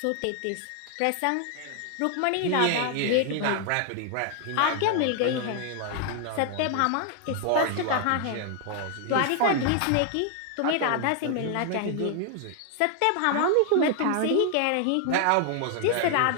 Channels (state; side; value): different; both; correlation 0.00